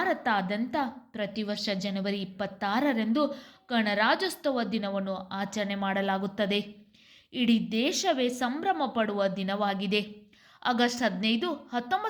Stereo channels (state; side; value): identical; both; correlation 1.00